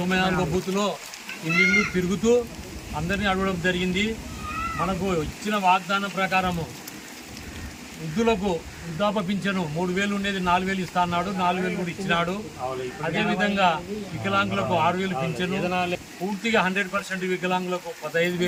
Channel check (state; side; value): identical; both; correlation 1.00